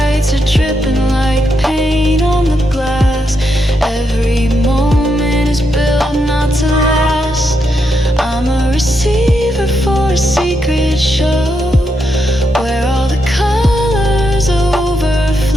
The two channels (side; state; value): both; normal; correlation 0.82